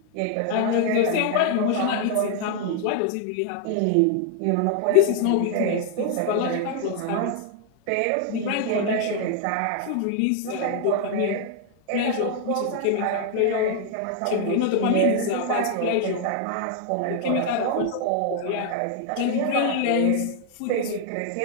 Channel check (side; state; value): both; different; correlation 0.00